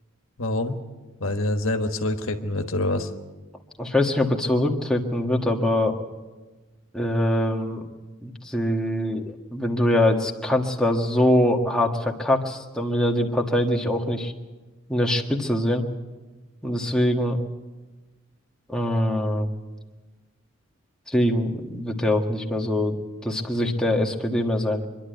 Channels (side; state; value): both; normal; correlation 0.71